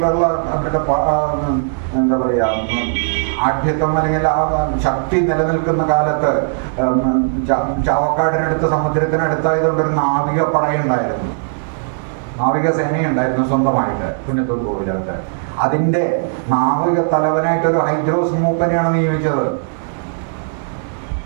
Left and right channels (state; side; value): silent; left; digital silence